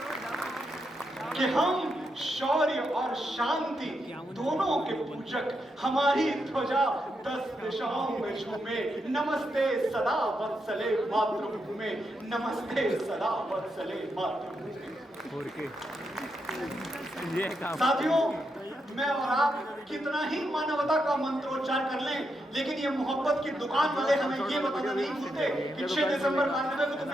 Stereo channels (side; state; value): both; normal; correlation 0.83